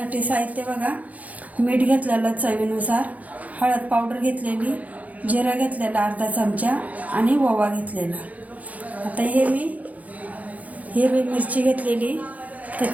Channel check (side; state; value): left; late; 0.074 ms